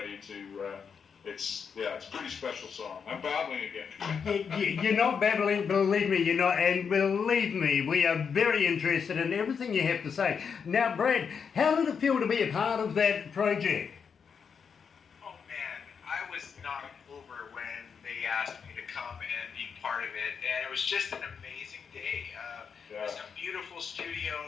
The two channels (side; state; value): right; quieter; 6.4 dB